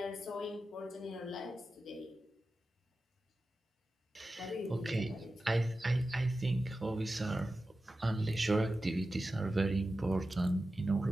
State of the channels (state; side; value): normal; both; correlation 0.93